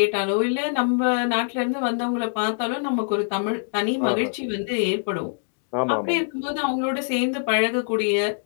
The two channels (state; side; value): silent; right; digital silence